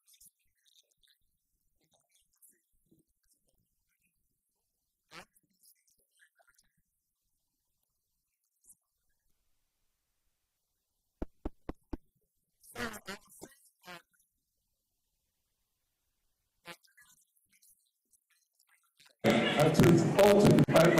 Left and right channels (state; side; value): identical; both; correlation 1.00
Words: not speak without the mic because I've not eaten food this morning. Okay. You have to eat first before you can shout. Yeah, right, sir. So I was saying that Nigeria's inflation today is very high. 24 to